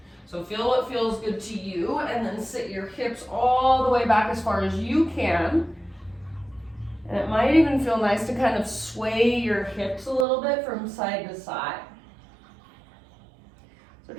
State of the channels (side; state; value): left; drops out; at 10.2 s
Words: So feel what feels good to you, and then sit your hips all the way back as far as you can. And it might even feel nice to kind of sway your hips a little bit from side to side. So